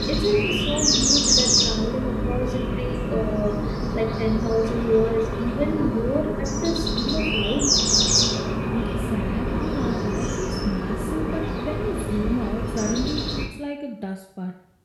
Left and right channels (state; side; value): identical; both; correlation 1.00